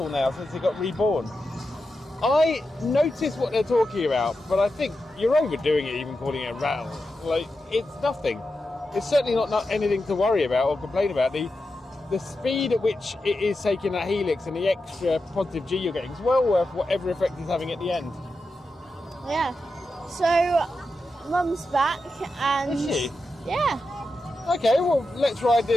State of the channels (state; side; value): normal; both; correlation 0.89